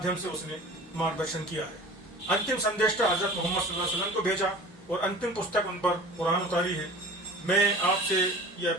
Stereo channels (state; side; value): normal; both; correlation 0.41